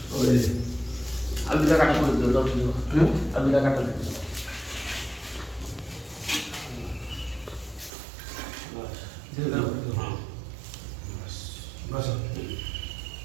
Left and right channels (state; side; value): drops out; left; at 7.9 s